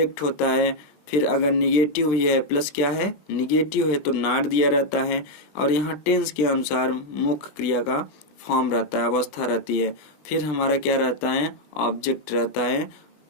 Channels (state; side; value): late; right; 20 ms